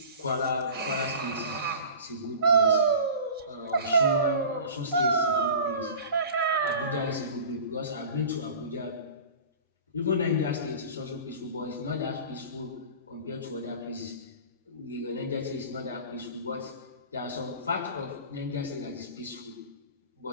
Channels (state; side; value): inverted; both; correlation -0.39